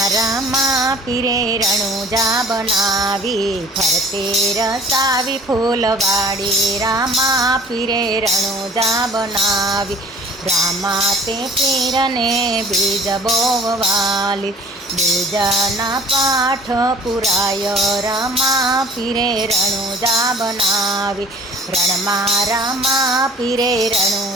रामा पीरे रणुजा बनावी, फरते रसावी फूलवाड़ी। रामा पीरे रणुजा बनावी, रामा ते पीरने बीज बोववाली। बीजना पाठ पुराय रामा पीरे रणुजा बनावी, रणमा रामा पीरे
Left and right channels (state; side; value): normal; both; correlation 0.50